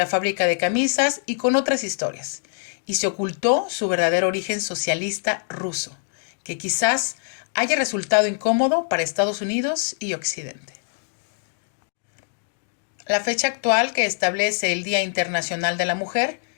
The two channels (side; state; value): right; silent; digital silence